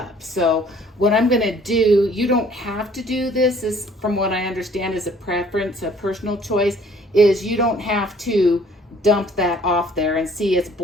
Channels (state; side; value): normal; both; correlation 0.57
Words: So what I'm going to do, you don't have to do this, is from what I understand is a preference, a personal choice, is you don't have to dump that off there. And see, it's